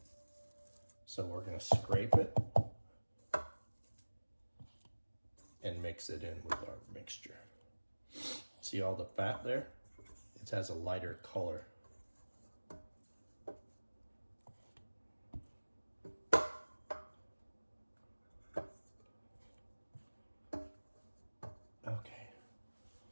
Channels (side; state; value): both; inverted; correlation -1.00